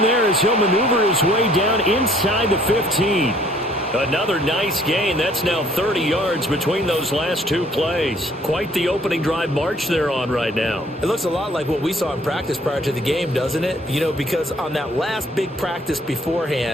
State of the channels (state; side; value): normal; both; correlation 0.59